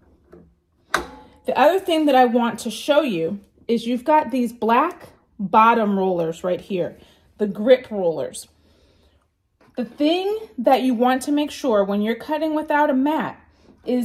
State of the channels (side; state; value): both; identical; correlation 1.00